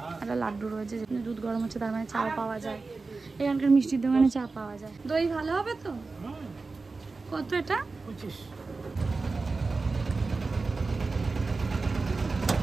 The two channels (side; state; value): left; quieter; 3.9 dB